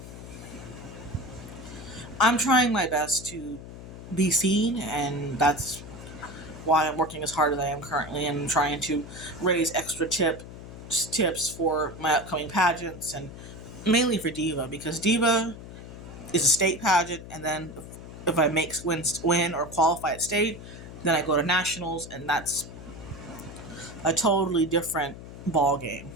I'm trying my best to be seen, and that's why I'm working as hard as I am currently and trying to raise extra tips for my upcoming pageants and mainly for Diva because Diva is a state pageant, and then if I win or qualify at state, then I go to nationals, and that's a totally different ball game.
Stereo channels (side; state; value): left; noise; hum, 13 dB below the sound